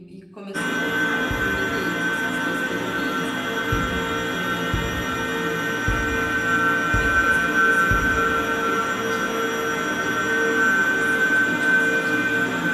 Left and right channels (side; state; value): both; identical; correlation 1.00